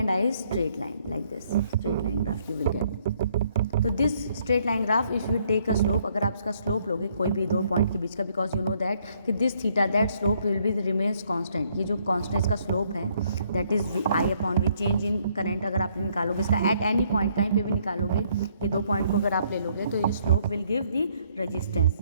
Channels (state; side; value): inverted; both; correlation -0.68